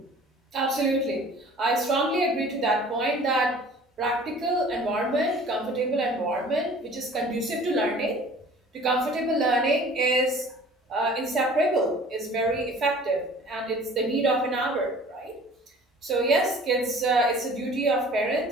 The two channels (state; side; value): normal; both; correlation 0.48